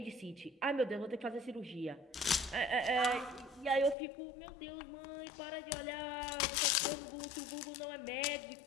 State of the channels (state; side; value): drops out; right; at 4.0 s